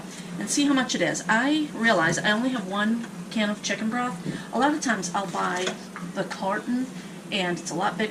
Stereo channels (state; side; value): identical; both; correlation 1.00